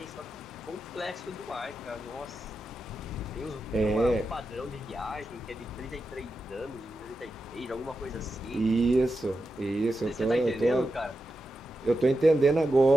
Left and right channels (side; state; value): both; normal; correlation 0.89